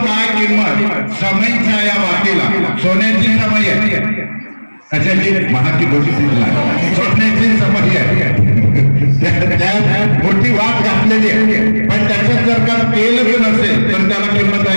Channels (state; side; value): inverted; both; correlation -1.00